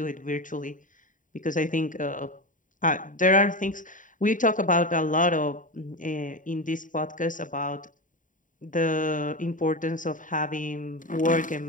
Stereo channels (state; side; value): late; right; 0.38 ms